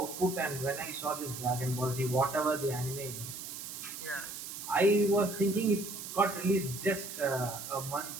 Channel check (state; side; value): noise; right; hiss, 9 dB below the sound